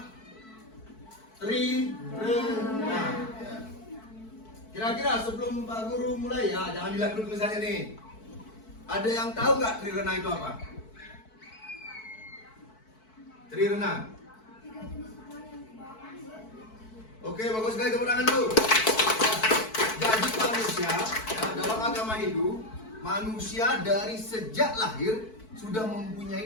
Trirena. Ya. Kira-kira sebelum Pak Guru mulai ya, jangan dilihat dulu tulisannya nih. Ada yang tahu nggak Trirena itu apa? Trirena. Oke, bagus sekali, tepuk tangan dulu. Jadi manusia ya, dalam agama Hindu, manusia dari sejak lahir sudah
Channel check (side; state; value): right; late; 4.6 ms